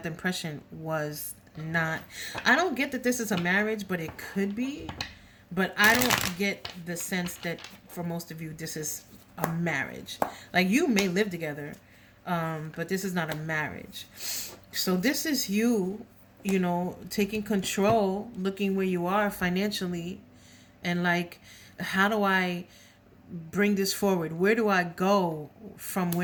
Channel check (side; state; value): both; identical; correlation 1.00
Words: impression was not. I don't get that this is a marriage, but it could be. But I don't get the sense that for most of you this is a marriage. Like, you may live together, but this is not a marriage. So this is you, taking control, looking where you are financially, and like, how do I bring this forward? Where do I go from